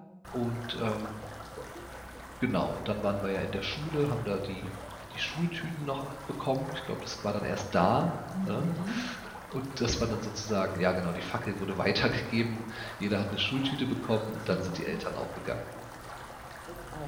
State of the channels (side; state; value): both; identical; correlation 1.00